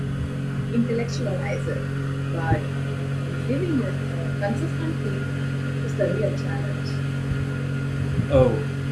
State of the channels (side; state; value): both; identical; correlation 1.00